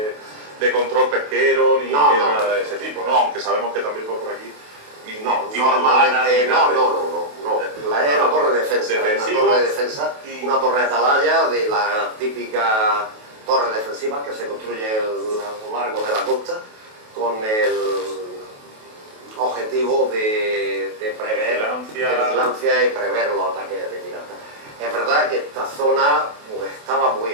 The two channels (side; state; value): left; late; 28 ms